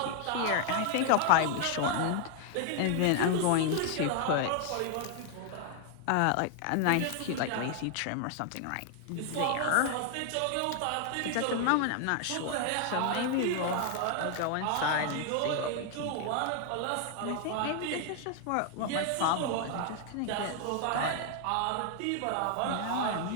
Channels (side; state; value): both; different; correlation 0.00